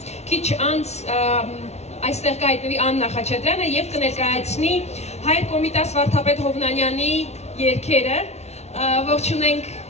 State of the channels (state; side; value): late; right; 0.31 ms